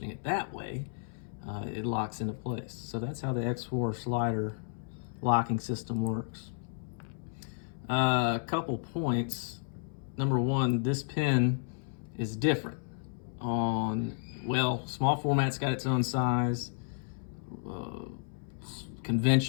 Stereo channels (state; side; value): silent; right; 56 dB below the other